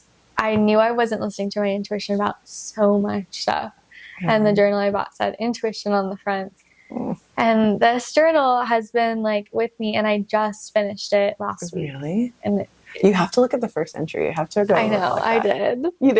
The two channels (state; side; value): identical; both; correlation 1.00